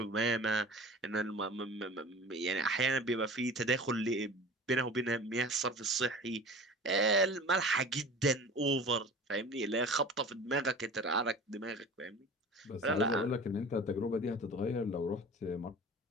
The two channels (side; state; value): both; normal; correlation 0.39